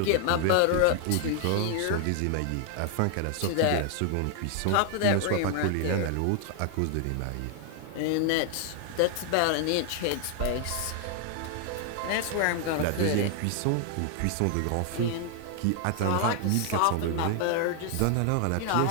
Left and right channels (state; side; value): different; both; correlation 0.00